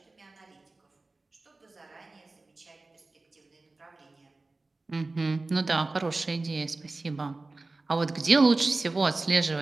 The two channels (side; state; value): left; quieter; 3.3 dB